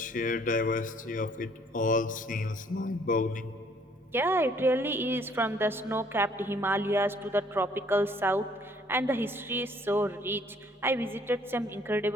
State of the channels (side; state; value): both; normal; correlation 0.62